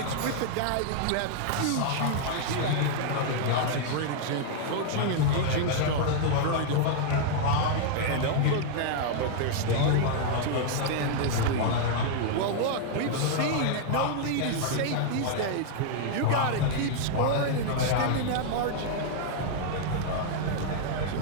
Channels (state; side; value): different; both; correlation 0.00